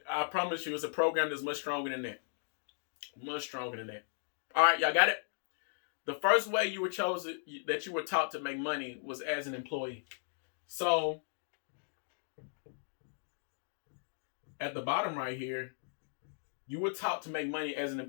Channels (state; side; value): silent; right; digital silence